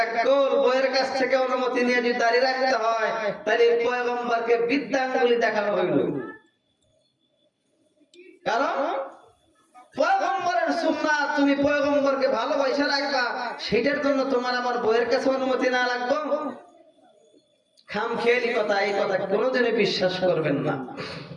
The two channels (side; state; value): both; identical; correlation 1.00